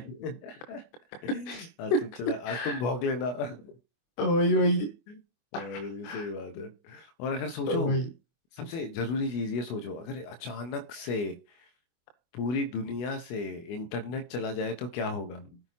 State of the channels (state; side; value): late; right; 24 ms